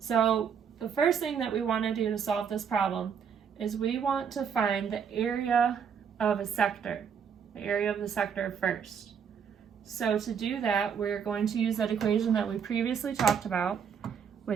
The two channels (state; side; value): quieter; left; 7.2 dB